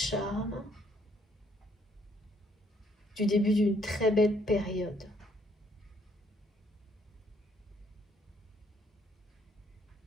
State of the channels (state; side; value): normal; both; correlation 0.67